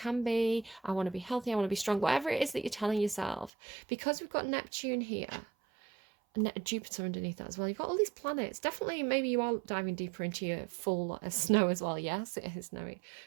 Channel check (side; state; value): left; drops out; at 3.5 s